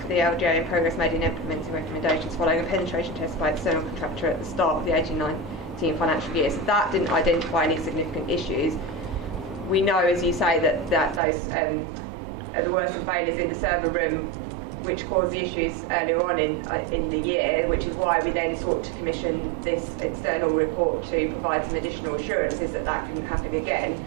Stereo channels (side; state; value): left; drops out; at 11.2 s